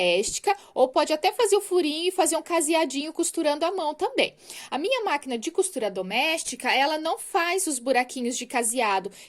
ou pode até fazer o furinho e fazer um caseadinho costurando à mão também. A minha máquina de costura doméstica, ela não faz os buraquinhos de caseado,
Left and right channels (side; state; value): both; identical; correlation 1.00